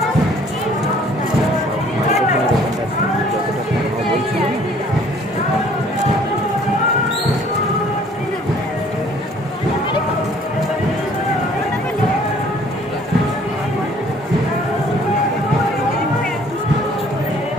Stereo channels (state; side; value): normal; both; correlation 0.57